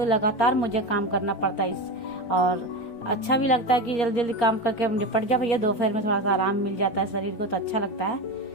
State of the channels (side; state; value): right; late; 4.3 ms